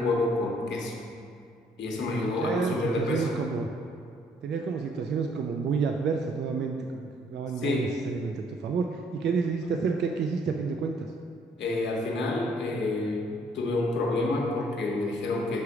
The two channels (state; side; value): normal; both; correlation 0.64